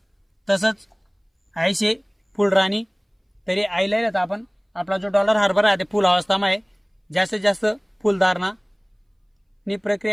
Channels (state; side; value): identical; both; correlation 1.00